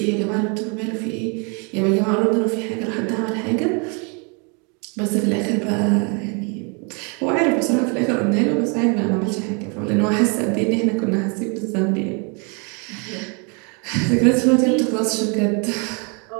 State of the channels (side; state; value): left; quieter; 34.5 dB